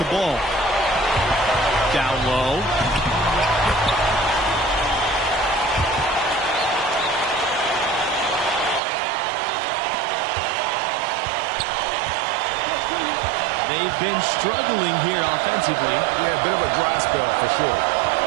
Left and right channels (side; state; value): left; drops out; at 8.8 s